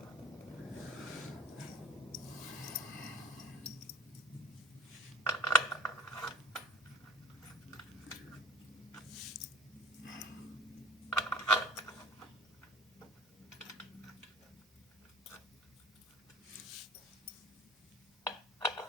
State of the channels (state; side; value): normal; both; correlation 0.42